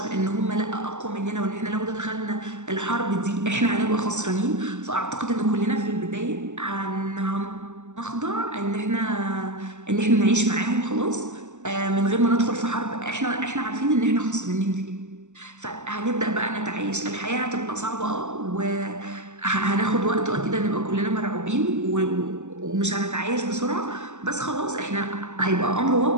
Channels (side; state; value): left; late; 0.84 ms